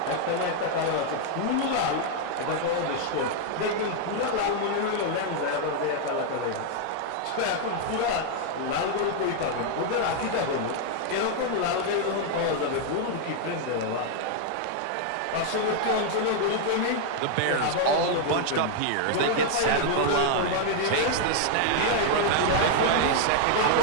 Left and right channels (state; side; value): different; both; correlation 0.00